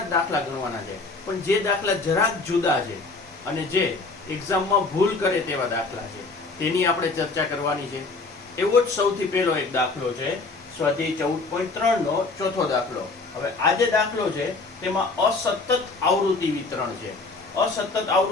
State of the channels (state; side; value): quieter; right; 3.7 dB